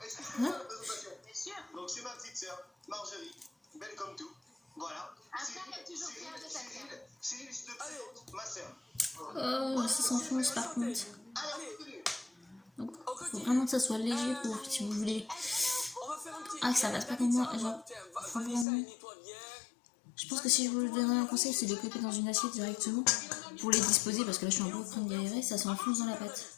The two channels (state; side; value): drops out; right; at 18.7 s